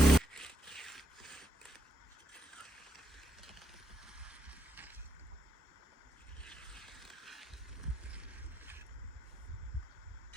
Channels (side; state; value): both; normal; correlation 0.79